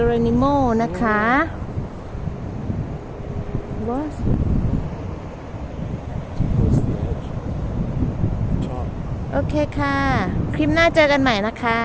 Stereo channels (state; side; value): identical; both; correlation 1.00